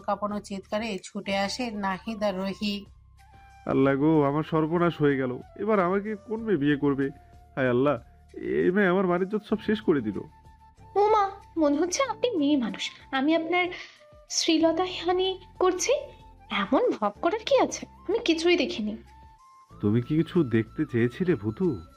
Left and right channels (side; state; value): both; identical; correlation 1.00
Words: কাঁপানো চিৎকারে ছুটে আসে নাহিদ আর রুহি। আল্লাহ গো, আমার সর্বনাশ হয়ে গেল। এবার আমাকে কোন মেয়ে বিয়ে করবে? হায় আল্লাহ, এই মেয়ে আমার মানিজ্জত সব শেষ করে দিল। ও মা, মনে হচ্ছে আপনি মেয়ে মানুষ। আমি আপনার শ্রীলতাহানি করছি। এমন ভাব করার কি আছে? আমি কিছুই দেখিনি। তুমি কি কিছু দেখতে চেয়েছিলে ভূতু?